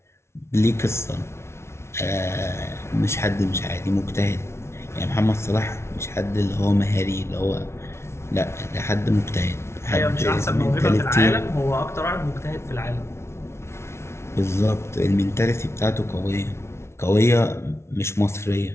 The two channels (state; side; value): late; right; 0.13 ms